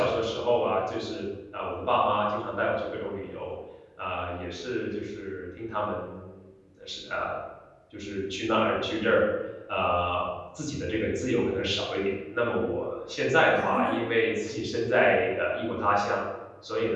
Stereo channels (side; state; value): both; identical; correlation 1.00